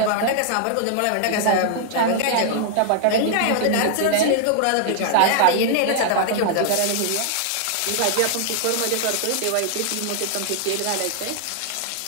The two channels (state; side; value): different; both; correlation 0.00